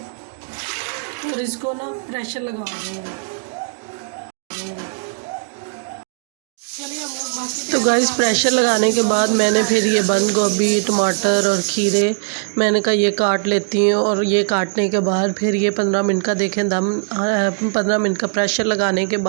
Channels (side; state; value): left; silent; digital silence